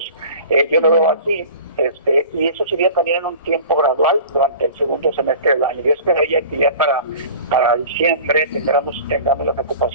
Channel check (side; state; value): both; inverted; correlation -0.41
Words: Yo lo veo así, y eso sería también en un tiempo gradual durante el segundo semestre del año. Yo esperaría que ya para diciembre tengamos las